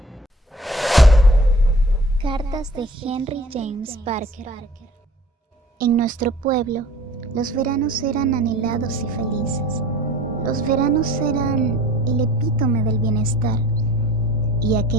Cartas de Henry James Parker. En nuestro pueblo, los veranos eran anhelados y felices. Los veranos eran el epítome del bienestar, y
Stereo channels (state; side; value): normal; both; correlation 0.47